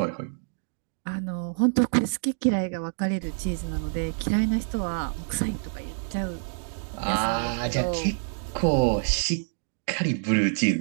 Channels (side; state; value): left; silent; digital silence